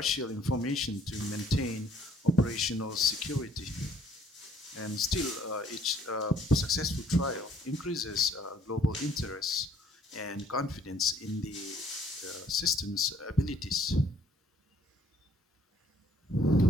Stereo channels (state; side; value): normal; both; correlation 0.61